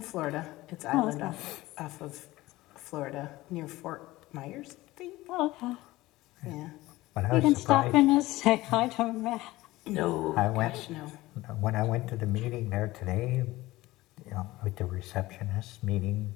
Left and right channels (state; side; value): quieter; right; 18.4 dB